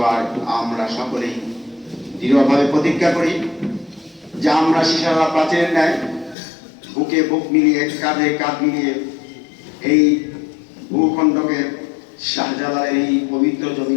আমরা সকলেই দৃঢ়ভাবে প্রতিজ্ঞা করি যে আমরা শিশারালা প্রাচীরের ন্যায় বুকে বুক মিলিয়ে, কাঁধে কাঁধ মিলিয়ে এই ভূখণ্ডকে, শাহজালালের এই পবিত্র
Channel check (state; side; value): drops out; right; at 6.4 s